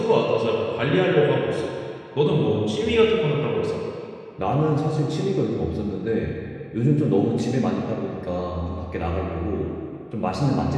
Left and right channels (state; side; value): identical; both; correlation 1.00